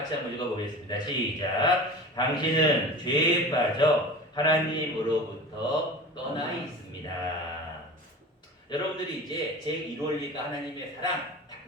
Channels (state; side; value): normal; both; correlation 0.35